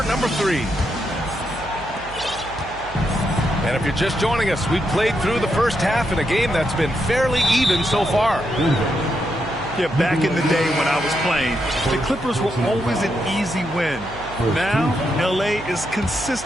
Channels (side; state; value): right; noise; hum, 17 dB below the sound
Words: number 3. And if you're just joining us, we've played through the first half in a game that's been fairly even so far. Yeah, back in the day when I was playing, the Clippers were always an easy win. Now, L.A. is